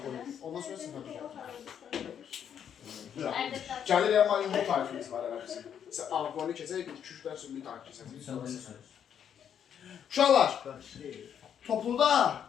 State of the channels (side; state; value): right; quieter; 8.7 dB